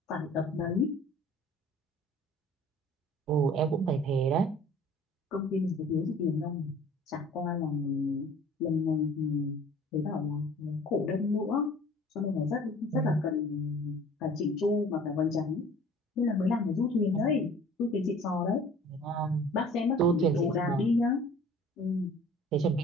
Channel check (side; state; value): both; normal; correlation 0.48